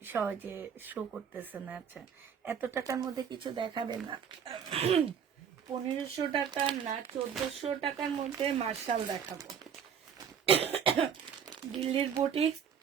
সহজে শো করতেছে না। আচ্ছা, এত টাকার মধ্যে কিছু দেখাবে না? 1500 টাকা না 1400 টাকার মধ্যে মার্শাল দেখাবো। দিল্লির বুটিক্স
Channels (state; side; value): quieter; left; 7.7 dB